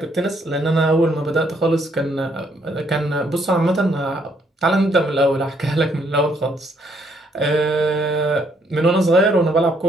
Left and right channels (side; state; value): both; normal; correlation 0.69